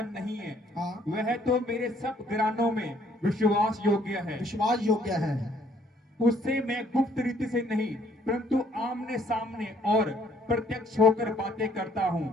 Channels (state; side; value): normal; both; correlation 0.63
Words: नहीं है। हाँ। वह तो मेरे सब घरानों में विश्वास योग्य है। विश्वास योग्य है। उससे मैं गुप्त रीति से नहीं परंतु आमने सामने और प्रत्यक्ष होकर बातें करता हूँ,